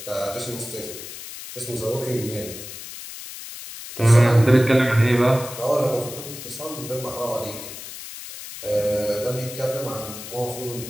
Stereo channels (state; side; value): noise; left; hiss, 11 dB below the sound